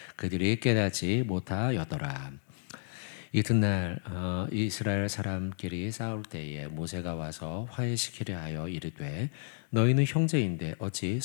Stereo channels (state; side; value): silent; right; 57 dB below the other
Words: 그들이 깨닫지 못하였더라. 이튿날 이스라엘 사람끼리 싸울 때에 모세가 와서 화해시키려 하여 이르되 너희는 형제인데 어찌